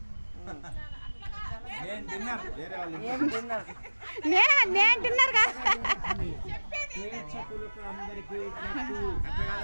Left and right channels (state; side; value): inverted; both; correlation -1.00